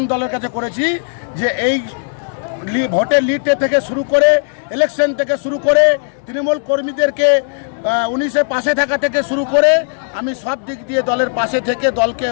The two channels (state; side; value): silent; right; digital silence